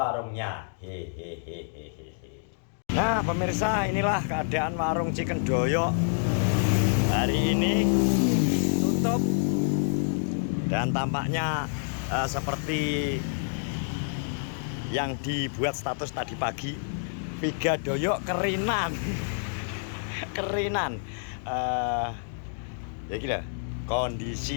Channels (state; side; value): silent; right; digital silence